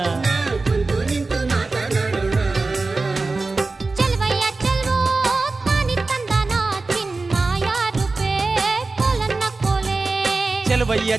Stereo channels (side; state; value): left; quieter; 3.6 dB